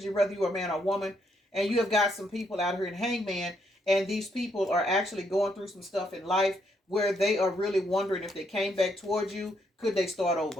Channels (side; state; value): both; normal; correlation 0.75